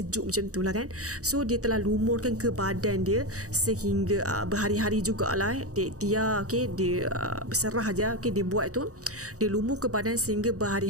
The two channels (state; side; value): late; left; 0.66 ms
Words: macam tu lah kan. So dia telah lumurkan ke badan dia sehingga berhari-hari jugalah dia ikhtiar, dia berserah aja, dia buat tu, dia lumur ke badan sehingga